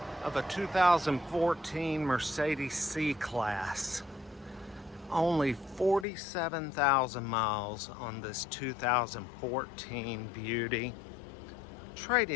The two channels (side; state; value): right; drops out; at 6.1 s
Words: of a 2014 Mercedes C class. Only 47,000 miles on this 2014 beauty.